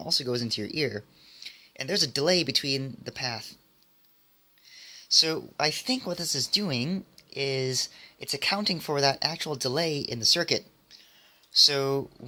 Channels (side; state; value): both; identical; correlation 1.00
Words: goes into your ear. And there's a delay between the path. So I think what this is doing is it's accounting for that actual delay in the circuit. So